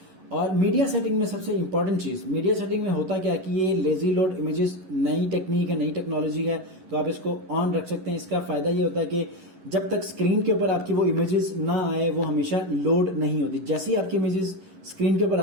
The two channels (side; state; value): left; late; 11 ms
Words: और मीडिया सेटिंग में सबसे इंपॉर्टेंट चीज, मीडिया सेटिंग में होता क्या कि ये लेजी लोड इमेजेस नई टेक्निक है, नई टेक्नोलॉजी है, तो आप इसको ऑन रख सकते हैं। इसका फायदा ये होता है कि जब तक स्क्रीन के ऊपर आपकी वो इमेजेस ना आए वो हमेशा लोड नहीं होती। जैसे ही आपकी इमेजेस स्क्रीन के ऊपर